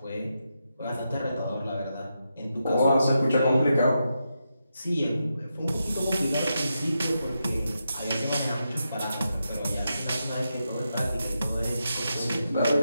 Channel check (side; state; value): both; inverted; correlation -0.86